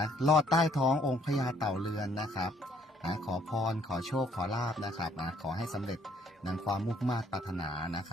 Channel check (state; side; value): normal; both; correlation 0.63